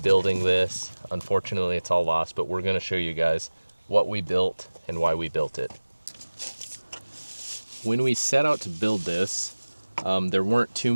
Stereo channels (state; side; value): inverted; both; correlation -1.00